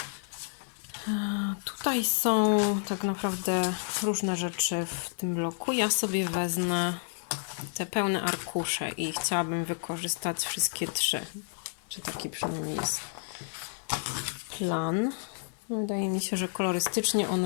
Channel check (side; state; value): right; silent; 58 dB below the other